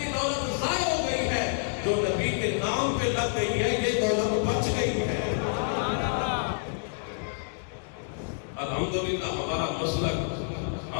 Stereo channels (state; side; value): silent; right; digital silence